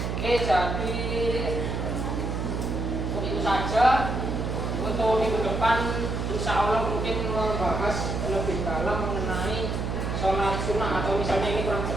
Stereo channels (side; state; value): right; noise; hum, 2 dB below the sound